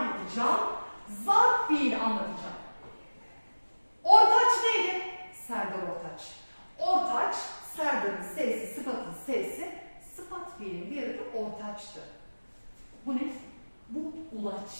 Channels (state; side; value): inverted; both; correlation -1.00